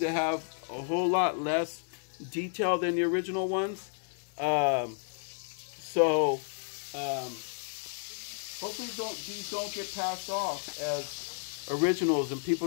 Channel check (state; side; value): silent; right; digital silence